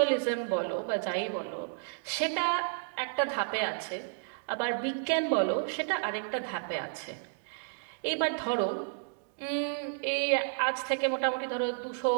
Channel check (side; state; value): left; silent; digital silence